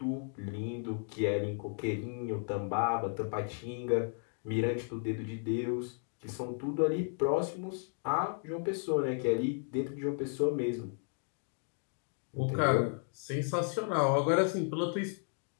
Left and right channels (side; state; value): right; silent; 55 dB below the other